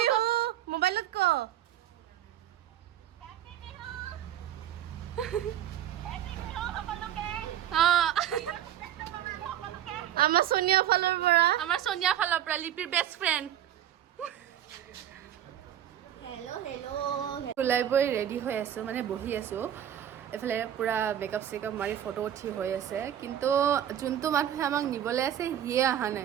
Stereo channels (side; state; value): left; quieter; 10.9 dB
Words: মোবাইলত ক। আমাৰ সোনিয়া ফালৰ পৰা লিপিৰ বেষ্ট ফ্ৰেণ্ড। ওলাই বৈ ৰেডি হৈ আছোঁ, মানে বহি আছোঁ। এইফালে পূৰা মেকআপ চেকআপ মাৰি ফটো উঠি হৈ আছে, কিন্তু যোনটো মানুহে আমাক নিবলৈ আছে সিয়ে অহা